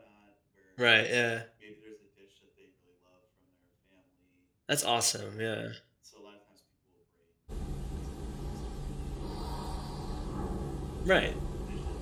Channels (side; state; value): both; identical; correlation 1.00